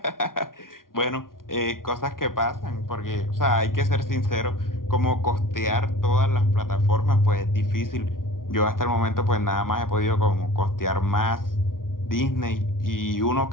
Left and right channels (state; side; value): late; right; 0.91 ms